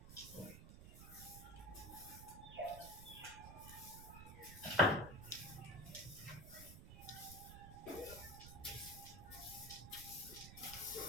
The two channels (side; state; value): right; noise; rumble, 12 dB below the sound